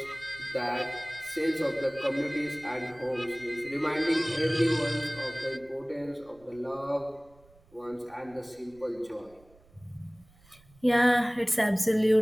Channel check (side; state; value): right; noise; rumble, 28 dB below the sound